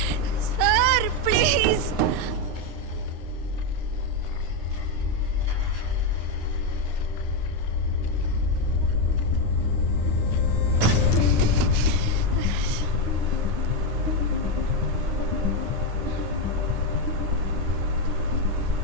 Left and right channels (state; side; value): late; left; 9.7 ms